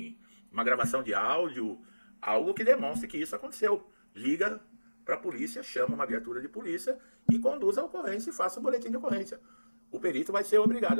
uma gravação de áudio, algo que demonstre que isso aconteceu. Liga para a polícia, chama uma viatura de polícia e conduz a ocorrência e faça um boletim de ocorrência. O perito vai ser obrigado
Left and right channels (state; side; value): inverted; both; correlation -1.00